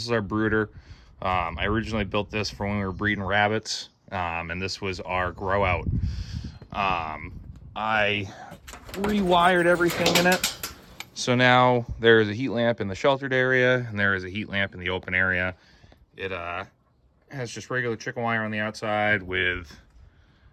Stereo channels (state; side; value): identical; both; correlation 1.00